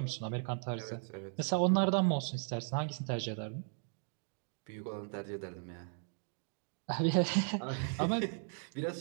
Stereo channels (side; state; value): left; silent; 53 dB below the other